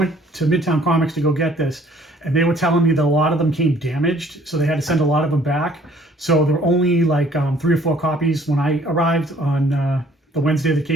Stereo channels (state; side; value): normal; both; correlation 0.58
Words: to Midtown Comics to go get this, and they were telling me that a lot of them came damaged, so they had to send a lot of them back. So there were only like 3 or 4 copies when I arrived on the Wednesday that